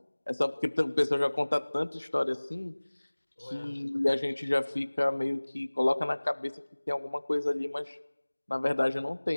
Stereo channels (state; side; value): inverted; both; correlation -1.00